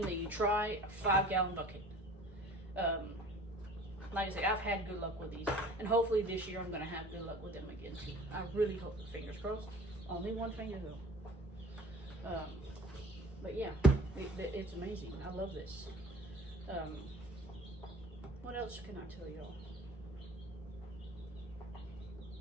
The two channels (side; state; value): both; normal; correlation 0.47